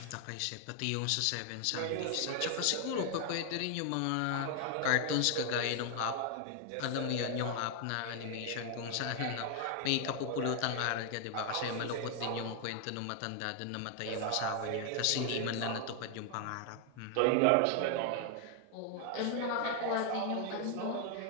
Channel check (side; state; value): both; different; correlation 0.00